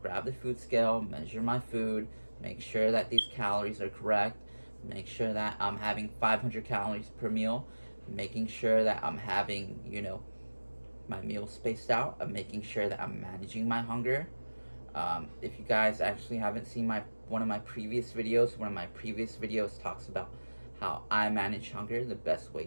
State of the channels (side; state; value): both; inverted; correlation -1.00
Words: grab the food scale, measure my food, make sure that these calories are correct, make sure that I'm having 500 calories per meal, making sure that I'm having, my meals spaced out. I'm making sure that I'm managing my hunger. If you guys actually haven't seen one of my previous videos talks about how I manage hunger, the best